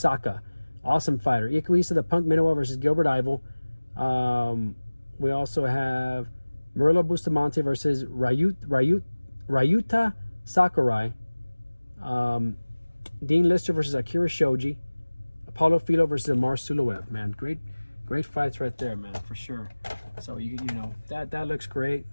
Awesome fighter. Ikuhisa the Punk Minowa versus Gilbert Ivel. We also have Murilo Bustamante versus Ryuta Sakurai. Dean Lister versus Akira Shoji. Apollo Filo versus Amar Suluev. Man, great fights right there, man, for sure. So that looks great.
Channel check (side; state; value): both; inverted; correlation -1.00